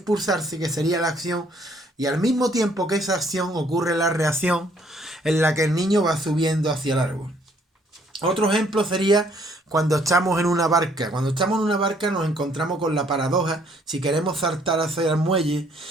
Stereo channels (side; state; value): both; normal; correlation 0.64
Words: que sería la acción, y al mismo tiempo que esa acción ocurre la reacción en la que el niño va subiendo hacia el árbol. Otro ejemplo sería cuando estamos en una barca. Cuando estamos en una barca nos encontramos con la paradoja, si queremos saltar hacia el muelle,